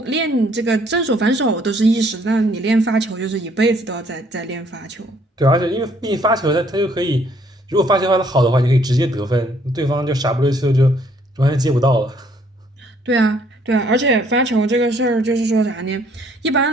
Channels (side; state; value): both; normal; correlation 0.64